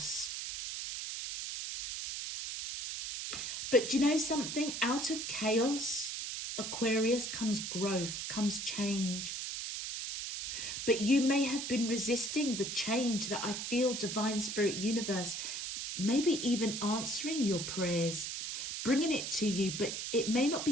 But do you know something? Out of chaos, Aquarius, comes growth, comes change. But you may have been resisting the change that I feel Divine Spirit Universe maybe even answering your prayers, bringing it to you, but it may not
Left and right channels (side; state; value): right; noise; hiss, 4 dB below the sound